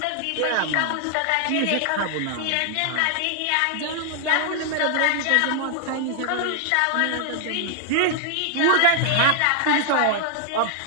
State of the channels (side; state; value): both; different; correlation 0.00